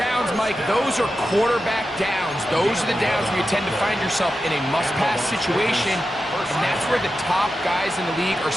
Mike, those are quarterback downs. Those are the downs where you tend to find yourself in a must-pass situation, and that's where the top guys in the league are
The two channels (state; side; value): normal; both; correlation 0.91